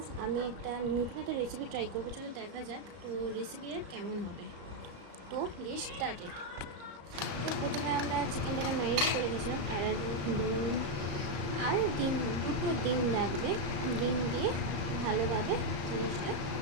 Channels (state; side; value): late; left; 34 ms